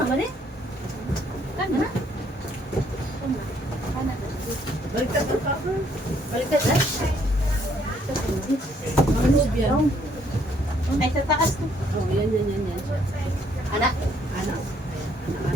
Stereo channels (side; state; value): both; normal; correlation 0.67